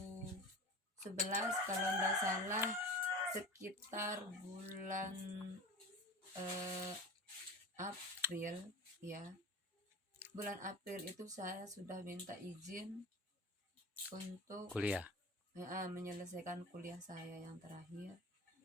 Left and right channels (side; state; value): both; normal; correlation 0.33